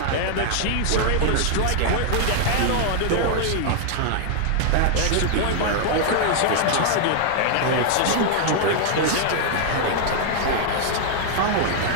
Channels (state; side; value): different; both; correlation 0.00